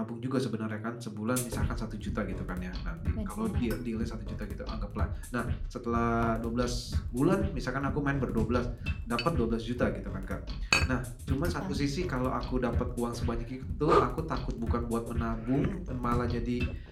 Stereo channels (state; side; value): identical; both; correlation 1.00